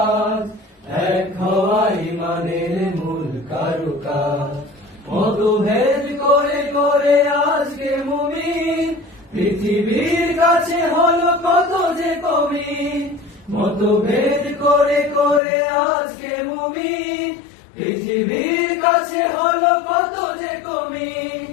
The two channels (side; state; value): right; drops out; at 15.4 s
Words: আজ, এক হওয়া ইমানের মূল কারুকাজ। মতভেদ করে করে আজকে মুমিন, পৃথিবীর কাছে হলো কত যে কমি। মতভেদ করে করে আজকে মুমিন, পৃথিবীর কাছে হলো কত যে কমি।